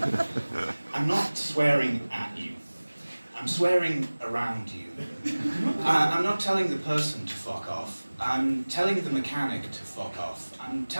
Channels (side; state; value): both; inverted; correlation -1.00